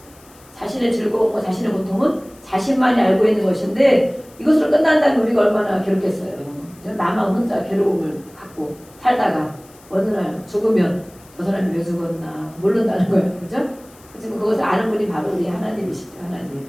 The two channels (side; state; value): left; noise; hiss, 26 dB below the sound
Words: 자신의 즐거움과 자신의 고통은 자신만이 알고 있는 것인데, 이것으로 끝난다면 우리가 얼마나 괴롭겠어요. 나만 혼자 괴로움을 갖고 살다가 어느 날 죽으면 저 사람이 왜 죽었나 모른다는 거예요. 그죠? 지금 그것을 아는 분이 바로 우리 하나님이시죠. 하나님.